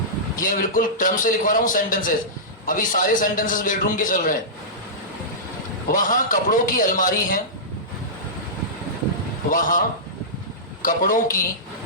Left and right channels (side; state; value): both; normal; correlation -0.15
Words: ये बिल्कुल टर्म से लिखवा रहा हूं सेंटेंसेस। अभी सारे सेंटेंसेस बेडरूम के चल रहे हैं। वहां कपड़ों की अलमारी है। वहां कपड़ों की